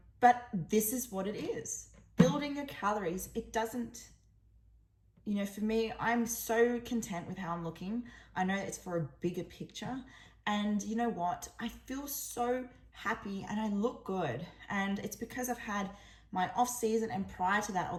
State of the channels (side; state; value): both; identical; correlation 1.00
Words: this is what it is. Building your calories, it doesn't, you know, for me, I'm so content with how I'm looking. I know it's for a bigger picture. And you know what? I feel so happy and I look good. And it's because I've had my off season, and prior to that, all